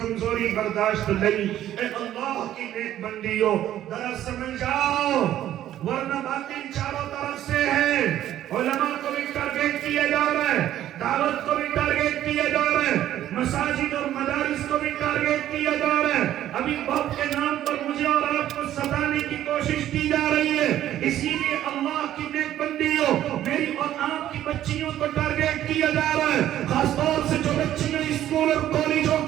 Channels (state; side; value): quieter; left; 12.3 dB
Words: برداشت نہیں۔ اے اللہ کی نیک بندیوں، ذرا سمجھ جاؤ، ورنہ باطل چاروں طرف سے ہے۔ علماء کو بھی ٹارگیٹ کیا جا رہا ہے، دعوت کو بھی ٹارگیٹ کیا جا رہا ہے، مساجد اور مدارس کو بھی ٹارگیٹ کیا جا رہا ہے۔ ابھی باپ کے نام پر مجھے اور آپ کو ستانے کی کوشش کی جا رہی ہے، اسی لیے اللہ کی نیک بندیوں، میری اور آپ کی بچیوں کو ٹارگیٹ کیا جا رہا ہے، خاص طور سے جو بچیاں اسکول اور کالجوں